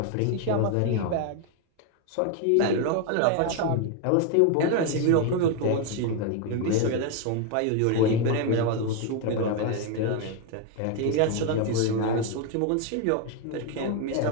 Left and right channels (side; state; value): both; different; correlation 0.01